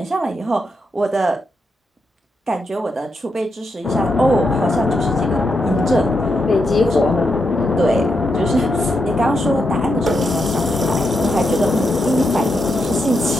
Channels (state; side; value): normal; both; correlation 0.83